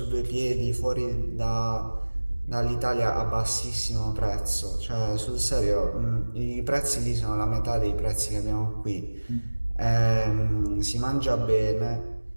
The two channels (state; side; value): inverted; both; correlation -1.00